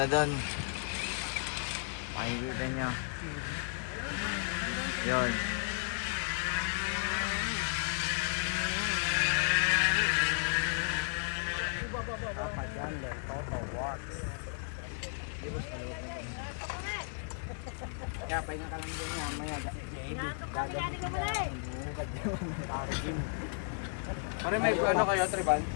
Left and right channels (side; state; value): right; silent; digital silence